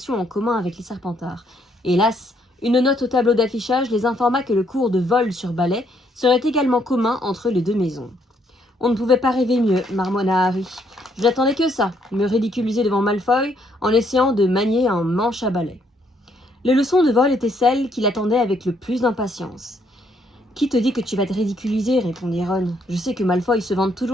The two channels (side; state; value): both; normal; correlation 0.71